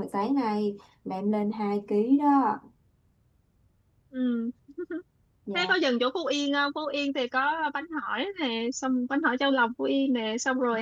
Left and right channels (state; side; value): identical; both; correlation 1.00